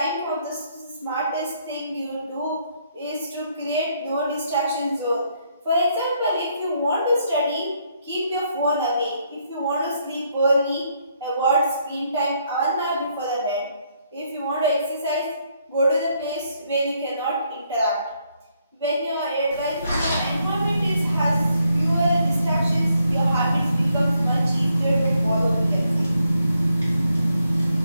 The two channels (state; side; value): inverted; both; correlation -0.74